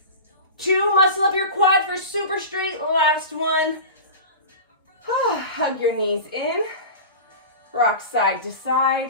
2, muscle up your quad for super straight. Last one. Hug your knees in. Rock side to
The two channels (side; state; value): both; inverted; correlation -0.31